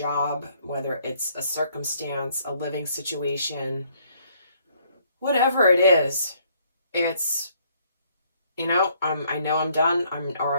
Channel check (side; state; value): both; inverted; correlation -0.65